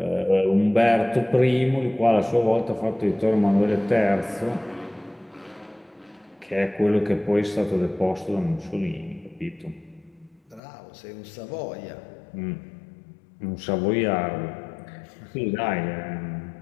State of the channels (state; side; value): drops out; right; at 10.6 s